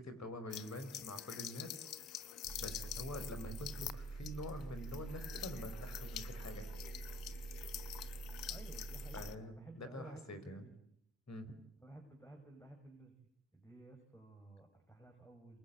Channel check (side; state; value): both; normal; correlation 0.55